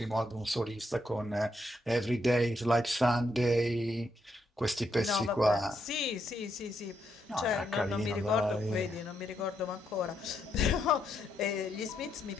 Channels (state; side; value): normal; both; correlation 0.78